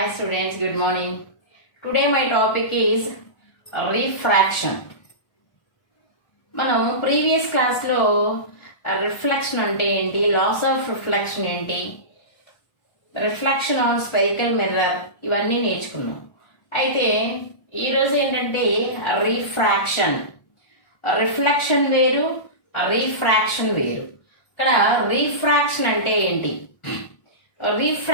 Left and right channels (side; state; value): right; late; 1.4 ms